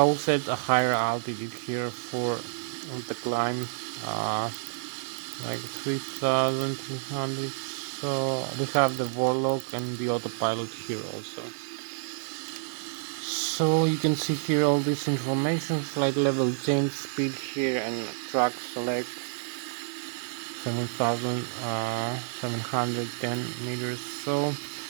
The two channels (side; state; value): left; silent; digital silence